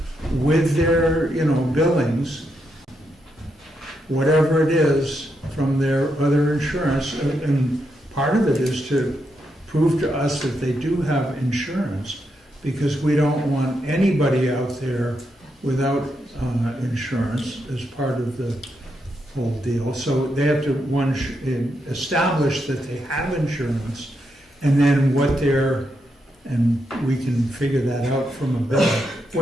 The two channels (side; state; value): both; normal; correlation 0.82